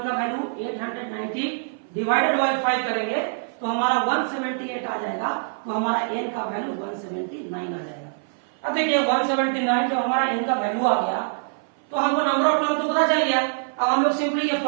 का वैल्यू 890 डिवाइडेड बाई 5 करेंगे तो हमारा 178 आ जाएगा, तो हमारा N का वैल्यू 179 आ जाएगा। अब देखिए 179 जब हमारा N का वैल्यू आ गया तो हमको नंबर ऑफ टर्म तो पता चल गया। अब हम लोग सिंपली ये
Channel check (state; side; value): silent; left; 57 dB below the other